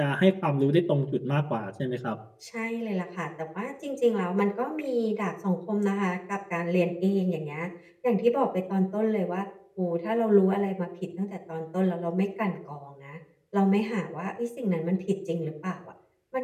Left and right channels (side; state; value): both; identical; correlation 1.00